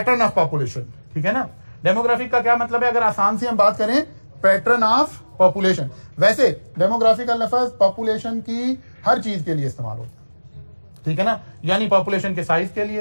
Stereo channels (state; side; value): inverted; both; correlation -1.00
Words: ऑफ पॉपुलेशन, ठीक है ना। डेमोग्राफिक का क्या मतलब है? अगर आसान से हम बात करें, पैटर्न ऑफ पॉपुलेशन। वैसे डेमोग्राफी का लफ्ज पॉपुलेशन की हर चीज के लिए इस्तेमाल होता है, ठीक है ना। यानी पॉपुलेशन के साइज के